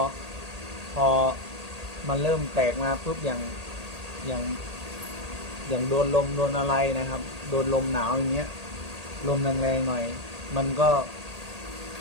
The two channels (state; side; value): late; left; 1.8 ms